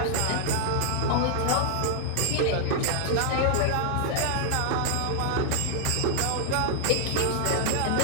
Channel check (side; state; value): both; different; correlation 0.00